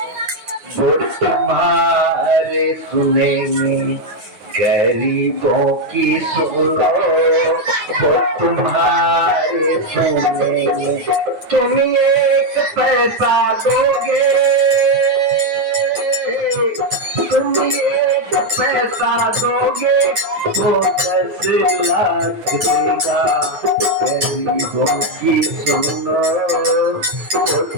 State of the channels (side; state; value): left; late; 9.5 ms